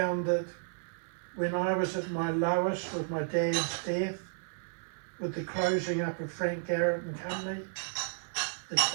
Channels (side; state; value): left; silent; 56 dB below the other